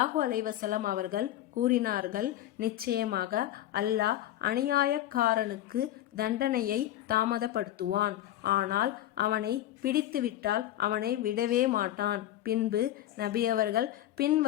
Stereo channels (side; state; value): right; quieter; 13.3 dB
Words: அலைஹி வஸல்லம் அவர்கள் கூறினார்கள், நிச்சயமாக அல்லாஹ் அநியாயக்காரனுக்கு தண்டனையை தாமதப்படுத்துவான், ஆனால் அவனை பிடித்துவிட்டால் அவனை விடவே மாட்டான். பின்பு நபி அவர்கள்